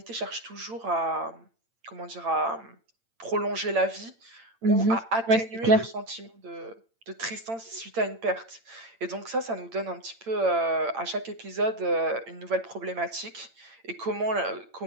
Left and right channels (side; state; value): left; late; 8.8 ms